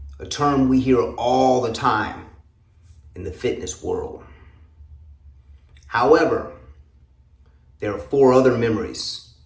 a term we hear all the time in the fitness world. However, there are 4 other memories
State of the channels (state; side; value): identical; both; correlation 1.00